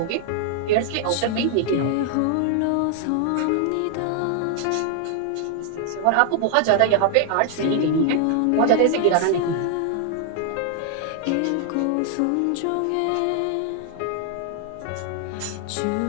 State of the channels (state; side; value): different; both; correlation 0.00